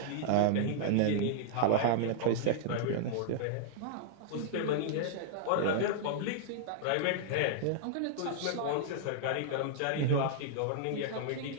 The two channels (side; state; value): both; different; correlation -0.01